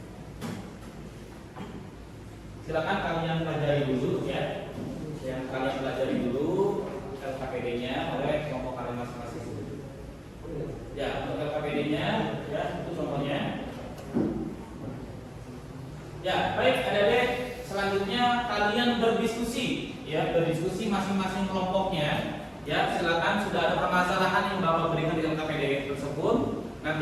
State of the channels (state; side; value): identical; both; correlation 1.00